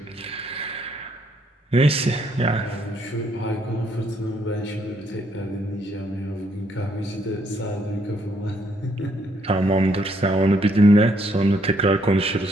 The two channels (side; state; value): both; normal; correlation 0.71